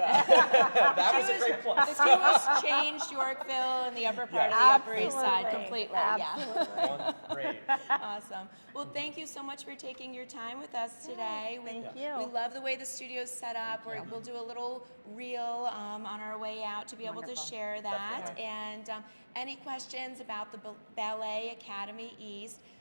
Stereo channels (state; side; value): inverted; both; correlation -1.00